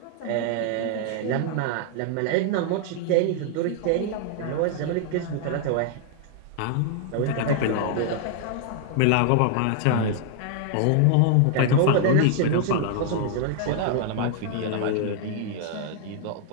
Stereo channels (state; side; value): different; both; correlation 0.00